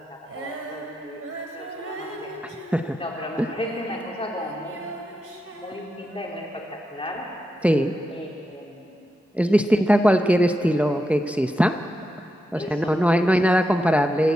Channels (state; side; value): normal; both; correlation 0.86